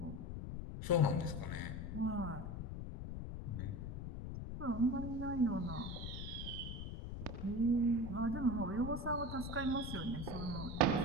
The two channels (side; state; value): left; noise; rumble, 6 dB below the sound